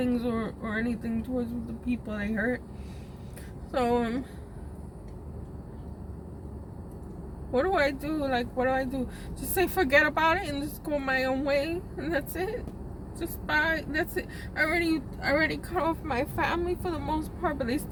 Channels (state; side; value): identical; both; correlation 1.00